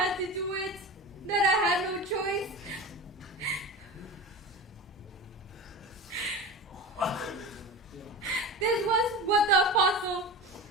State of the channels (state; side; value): normal; both; correlation 0.29